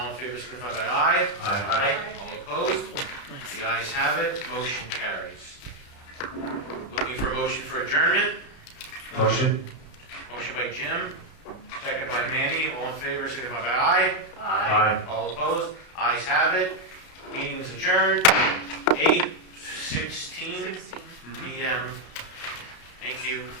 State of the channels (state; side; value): late; right; 32 ms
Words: in favor, signify by aye. Aye. All opposed? The ayes have it, motion carries. Looking for a motion for adjournment? Motion. Motion by Jim, second by Manny. All in favor, signify by aye. Aye. All opposed? Ayes have it. Meeting is adjourned. 8:16 p.m. Thank you.